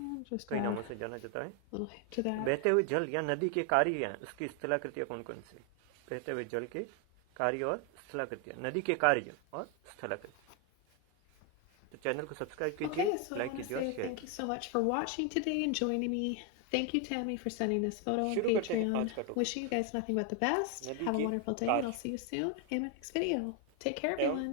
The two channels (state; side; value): different; both; correlation 0.01